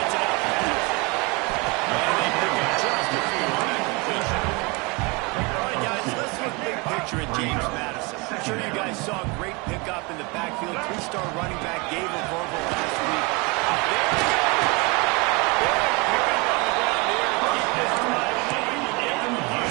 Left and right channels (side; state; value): left; quieter; 27.4 dB